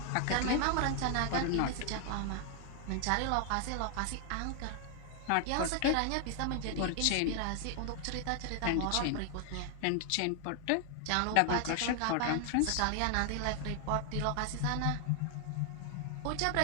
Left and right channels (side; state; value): both; different; correlation 0.00